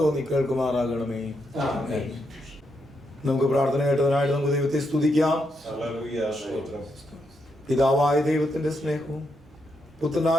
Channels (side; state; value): both; normal; correlation 0.81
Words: കേൾക്കുമാറാകണമേ. നമുക്ക് പ്രാർത്ഥന കേട്ടതിനായിട്ട് നമുക്ക് ദൈവത്തെ സ്തുതിക്കാം. പിതാവായ ദൈവത്തിന്റെ സ്നേഹവും